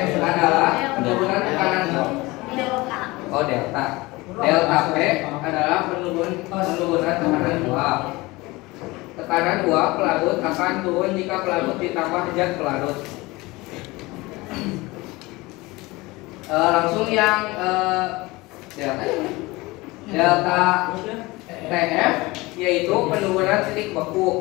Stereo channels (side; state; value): right; quieter; 21.9 dB